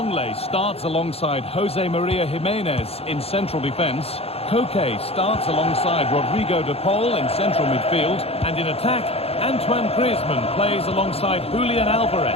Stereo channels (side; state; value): right; late; 0.29 ms